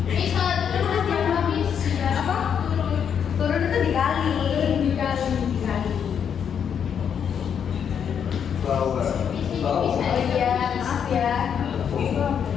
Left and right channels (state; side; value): quieter; right; 7.8 dB